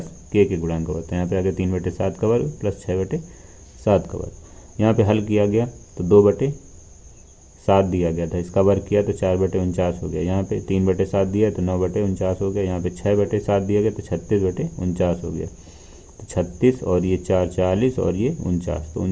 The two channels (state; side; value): identical; both; correlation 1.00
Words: के गुणांक का वर्ग। तो यहाँ पे आ गया 3/7 का वर्ग प्लस 6/7 का वर्ग। यहाँ पे हल किया गया तो 2/7 दिया गया था, इसका वर्ग किया तो 4/49 हो गया। यहाँ पे 3/7 दिया तो 9/49 हो गया। यहाँ पे 6/7 दिया गया तो 36/49 हो गया। तो 36 और ये 4 40 और ये 49, तो